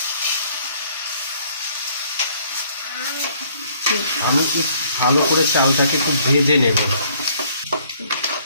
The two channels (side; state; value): both; inverted; correlation -0.62